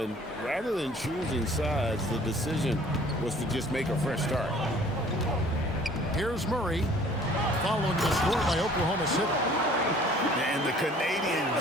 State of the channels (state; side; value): normal; both; correlation 0.53